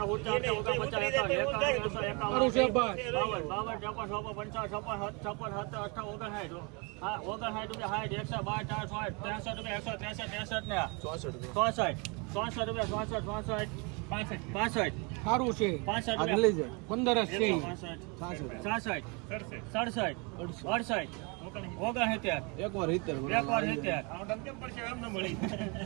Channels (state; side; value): quieter; left; 31.1 dB